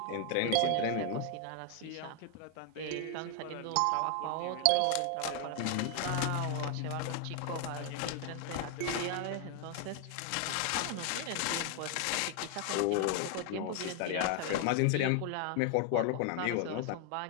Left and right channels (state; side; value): different; both; correlation 0.00